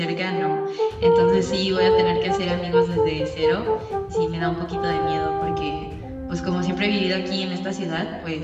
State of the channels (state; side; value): identical; both; correlation 1.00